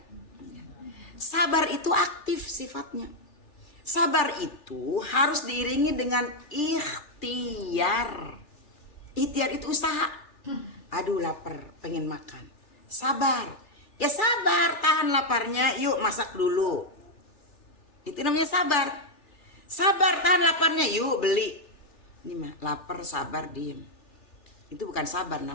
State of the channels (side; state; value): right; late; 3.4 ms